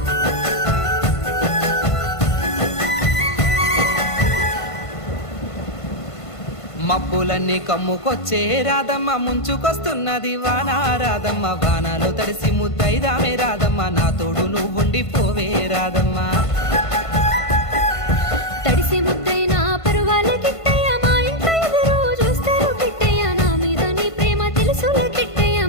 మబ్బులన్నీ కమ్ముకొచ్చే రాదమ్మ ముంచుకొస్తున్నది వాన రాదమ్మ వానలో తడిసి ముద్దైదామే రాదమ్మ నా తోడు నువ్వుండి పోవే రాదమ్మ తడిసి ముద్దైన పరువాలకి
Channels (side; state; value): right; late; 1.5 ms